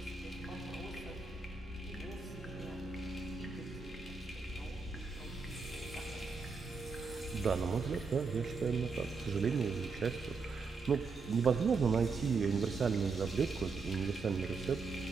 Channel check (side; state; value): left; quieter; 4.7 dB